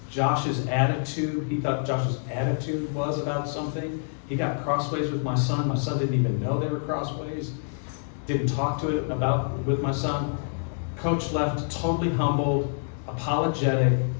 Josh's attitude, he thought Josh's attitude was about something. He got crossways with my son. My son didn't even know they were crossways. Didn't talk to it with my son. Coach left totally humbled, apologetic.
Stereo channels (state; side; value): silent; right; digital silence